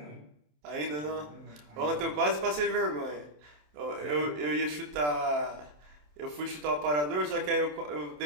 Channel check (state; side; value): late; left; 27 ms